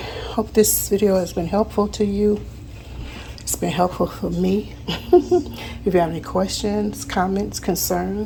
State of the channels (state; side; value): identical; both; correlation 1.00